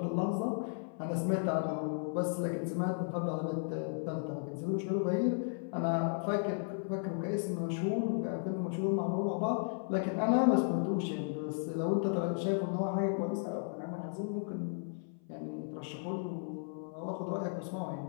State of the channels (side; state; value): right; silent; 55 dB below the other